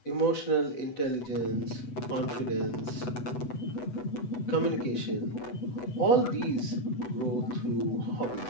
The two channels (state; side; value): late; right; 8.1 ms